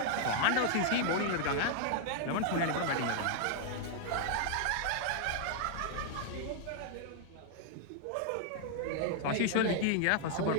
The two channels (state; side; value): different; both; correlation 0.00